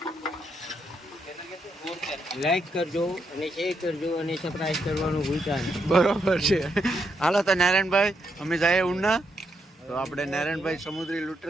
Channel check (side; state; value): both; normal; correlation 0.79